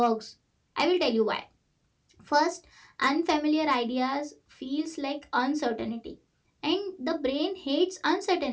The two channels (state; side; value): identical; both; correlation 1.00